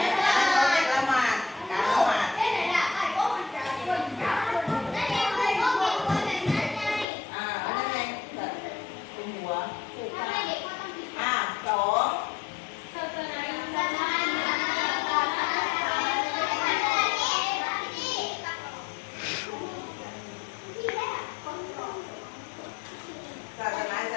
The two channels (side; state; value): right; drops out; at 7.1 s